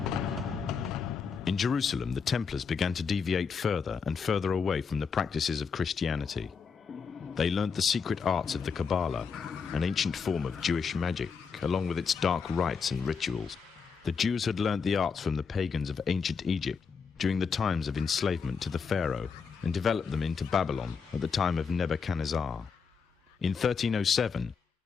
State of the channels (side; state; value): right; quieter; 5.8 dB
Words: In Jerusalem, the Templars began to deviate further and further away from the practices of Christianity. They learnt the secret arts of the Kabbalah, an ancient form of Jewish magic, along with its dark rites and rituals. The Jews had learnt the arts from the pagans of ancient Egypt during the times of enslavement to the Pharaoh, and developed them into Babylon at the time of Nebuchadnezzar. In 1307,